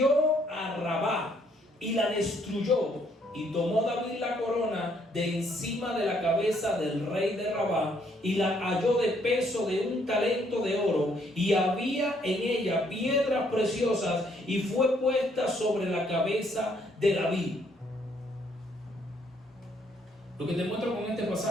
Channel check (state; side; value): normal; both; correlation 0.68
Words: a Rabá y la destruyó, y tomó David la corona de encima de la cabeza del rey de Rabá, y la halló de peso de 1 talento de oro, y había en ella piedras preciosas, y fue puesta sobre la cabeza de David. Lo que te muestro con este